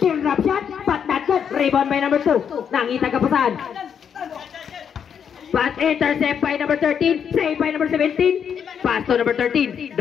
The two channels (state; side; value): quieter; right; 7.7 dB